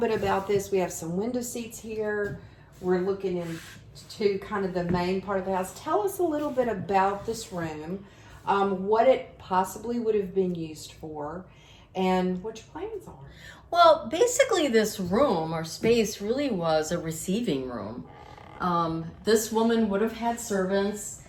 about this. We have some window seats here. We're looking into kind of the main part of the house. Tell us a little bit about this room, what it possibly would have been used for, and what your plans are. Well, basically this room or space really was a receiving room. This woman would have had servants.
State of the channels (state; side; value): identical; both; correlation 1.00